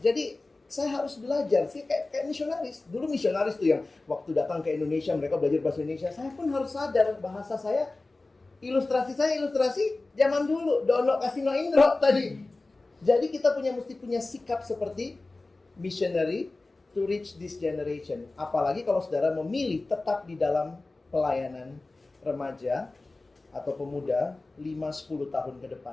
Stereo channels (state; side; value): quieter; right; 3.2 dB